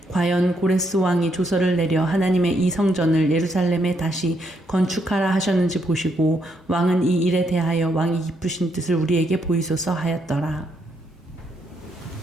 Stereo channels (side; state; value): both; normal; correlation 0.75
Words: 과연 고레스 왕이 조서를 내려 하나님의 이 성전을 예루살렘에 다시 건축하라 하셨는지 보시고, 왕은 이 일에 대하여 왕이 기쁘신 뜻을 우리에게 보이소서 하였더라.